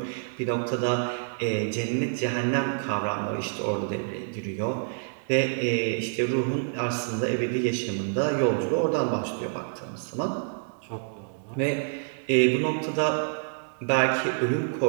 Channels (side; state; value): left; silent; digital silence